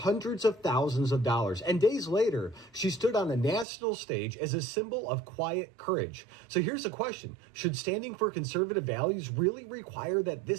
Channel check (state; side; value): drops out; left; at 3.7 s